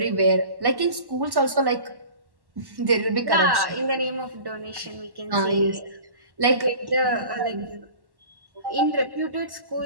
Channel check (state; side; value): late; left; 1.1 ms